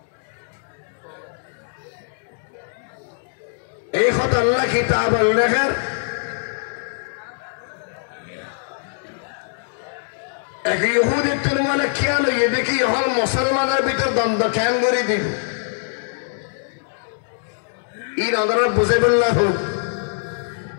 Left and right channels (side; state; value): right; silent; digital silence